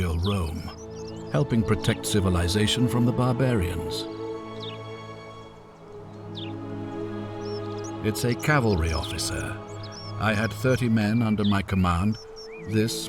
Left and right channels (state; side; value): identical; both; correlation 1.00